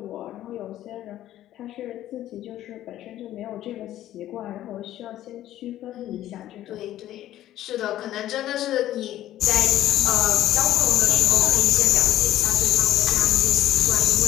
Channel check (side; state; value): right; quieter; 13.2 dB